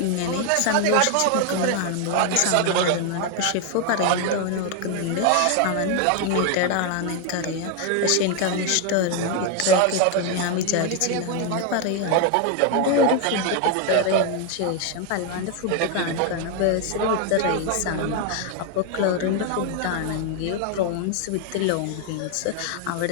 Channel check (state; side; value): different; both; correlation 0.01